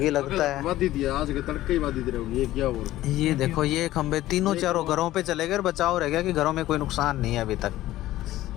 लगता है। बाधित दिया आज के तड़के ही बाधित रहेगी। ये क्या हो रहा ये देखो ये खंबे तीनों चारों घरों पे चले गए, बचाव रह गया कि घरों में कोई नुकसान नहीं है अभी तक।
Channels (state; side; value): quieter; right; 15.3 dB